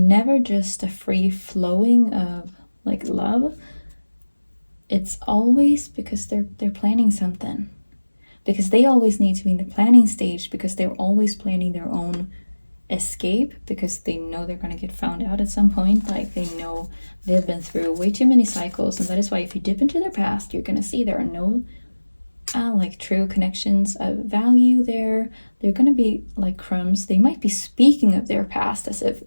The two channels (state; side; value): inverted; both; correlation -1.00